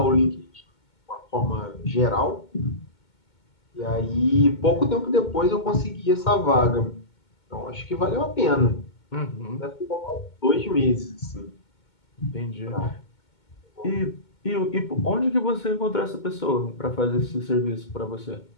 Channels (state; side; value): late; right; 2.2 ms